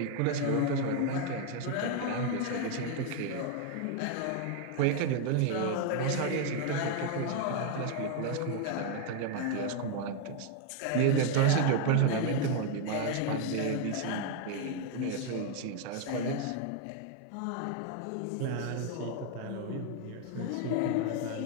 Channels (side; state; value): both; different; correlation 0.00